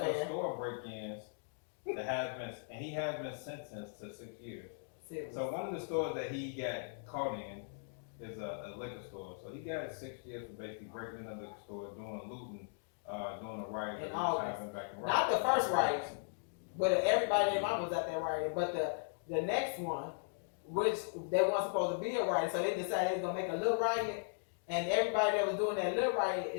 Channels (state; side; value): silent; right; digital silence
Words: of man. store break-ins that he has been sentenced to 6 years. Serious. So one of the stores that he got caught in is a liquor store. So he got 6 years for basically breaking in a liquor store, doing looting, doing the riots. In that was August. happening back in Not the Russia. first riot, but everybody in mom was at that riot. But the next one, which they weren't supposed to be a riot, so they decided they was gonna make a little riot, and everybody that was doing that little riot